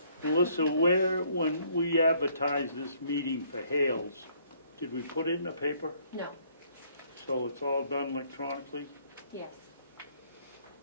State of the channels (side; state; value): both; inverted; correlation -0.64